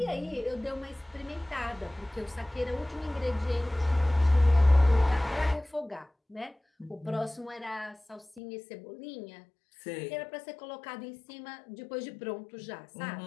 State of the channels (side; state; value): right; drops out; at 8.4 s